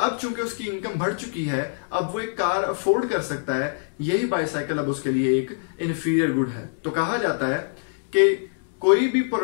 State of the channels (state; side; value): silent; right; digital silence